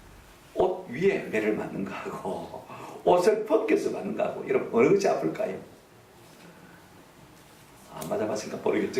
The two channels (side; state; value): both; identical; correlation 1.00